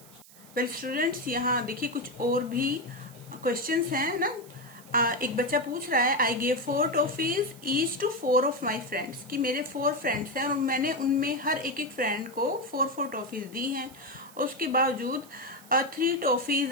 वेल स्टूडेंट्स, यहाँ देखिए कुछ और भी क्वेश्चंस हैं ना। एक बच्चा पूछ रहा है, I gave 4 toffees each to 4 of my friends, कि मेरे 4 फ्रेंड्स हैं और मैंने उनमें हर एक एक फ्रेंड को 4 टॉफीज दी हैं। उसके बावजूद 3 toffees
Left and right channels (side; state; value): right; noise; hiss, 22 dB below the sound